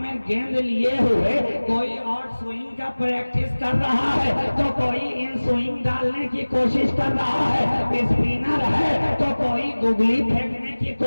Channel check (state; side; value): inverted; both; correlation -1.00